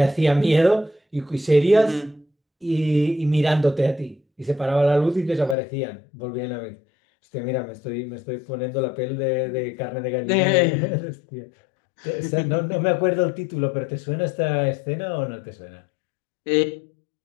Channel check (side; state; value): right; drops out; at 5.6 s